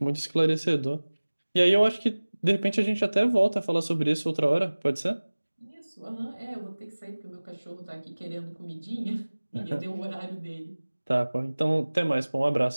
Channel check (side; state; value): both; inverted; correlation -1.00